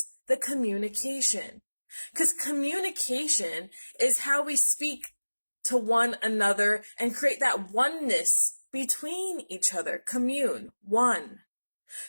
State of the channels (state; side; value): inverted; both; correlation -1.00